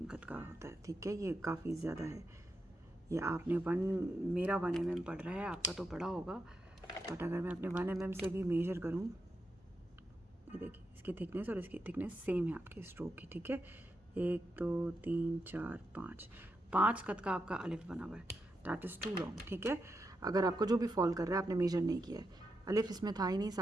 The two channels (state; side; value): normal; both; correlation 0.86